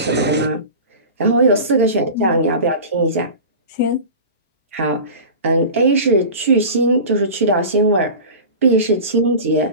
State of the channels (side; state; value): both; inverted; correlation -0.33